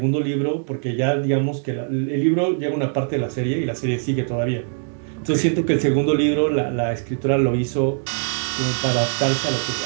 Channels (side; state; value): left; silent; digital silence